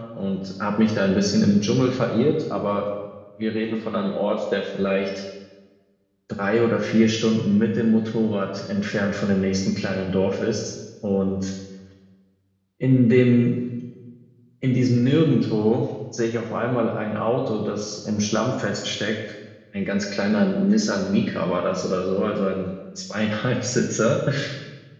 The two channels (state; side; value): identical; both; correlation 1.00